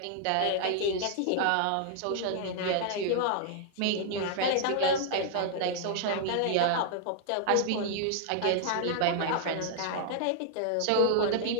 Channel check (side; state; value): both; different; correlation -0.01